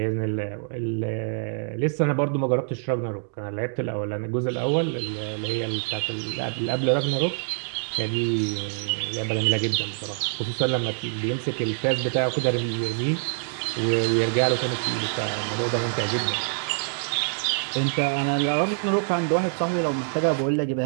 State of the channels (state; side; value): silent; left; digital silence